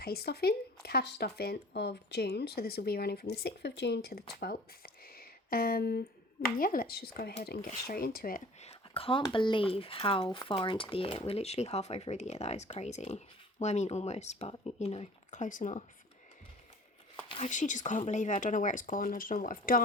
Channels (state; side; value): normal; both; correlation 0.46